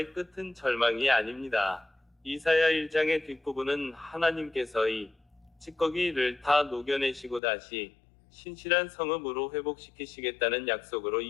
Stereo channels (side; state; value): right; drops out; at 7.4 s